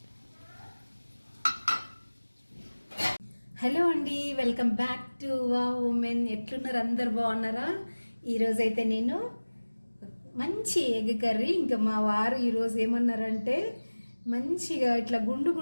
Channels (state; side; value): inverted; both; correlation -1.00